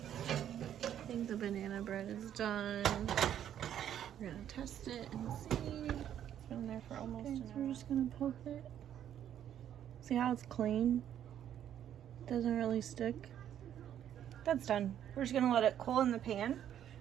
I think the banana bread is done. We're gonna test it and see. It's been there for almost an hour. We're just gonna poke it. See how it's clean? Doesn't really stick. That's done. We're just gonna let it cool in the pan.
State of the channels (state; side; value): quieter; left; 10.3 dB